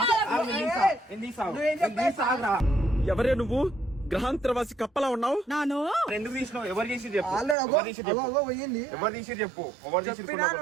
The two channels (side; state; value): left; drops out; at 7.6 s